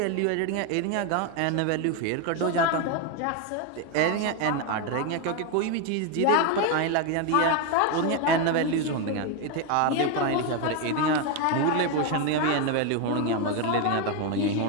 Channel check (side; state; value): both; different; correlation 0.02